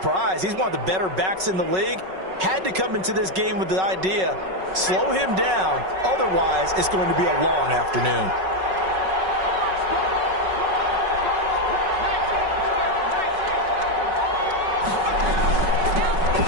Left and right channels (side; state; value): left; late; 5.4 ms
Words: He's one of the better backs in the league. Had to come into this game with the idea, slow him down, otherwise it's going to be a long afternoon.